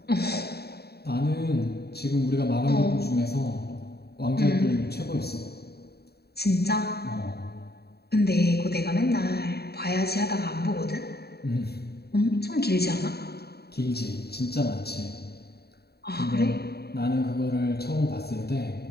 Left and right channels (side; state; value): right; late; 0.47 ms